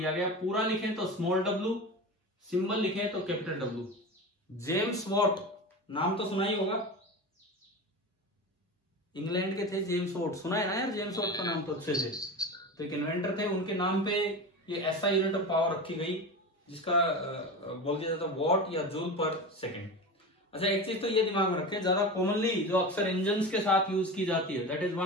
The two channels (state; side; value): normal; both; correlation 0.27